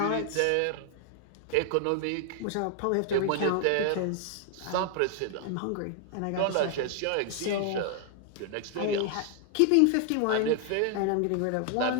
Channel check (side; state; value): both; different; correlation 0.00